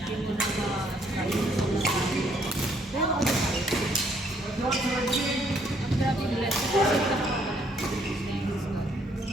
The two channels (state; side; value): normal; both; correlation 0.67